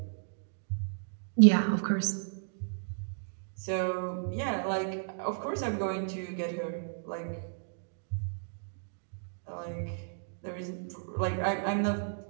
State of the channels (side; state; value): left; silent; digital silence